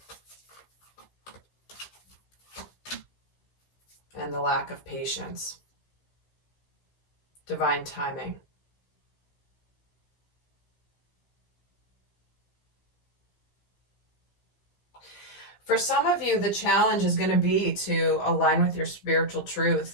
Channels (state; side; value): late; right; 15 ms